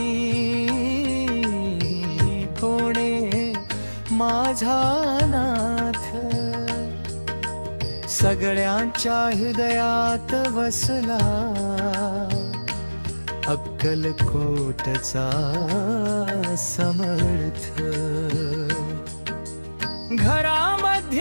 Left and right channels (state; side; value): inverted; both; correlation -1.00